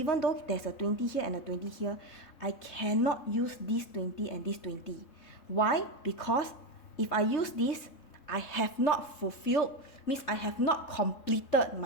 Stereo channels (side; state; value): right; late; 3.6 ms